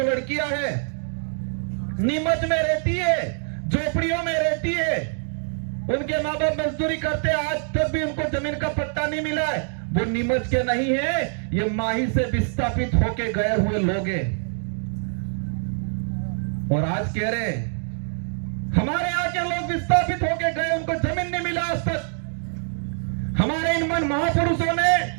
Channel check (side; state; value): left; silent; 57 dB below the other